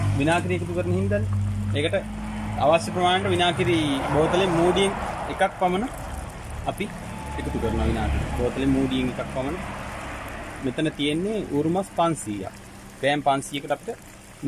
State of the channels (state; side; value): identical; both; correlation 1.00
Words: විනාගිරි එකතු කරන හින්දානේ. ඒකට අවශ්‍ය ප්‍රමාණයට විනාගිරි බෝතලේ මූඩියෙන් එකක් පමණ අපි එකතු කරනවා. විනාගිරි බෝතලේ මූඩියෙන් එකක් පමණ මෙතන තියෙන්නේ ඌරුමස් 500ක්. ග්‍රෑම් 500කට අපිට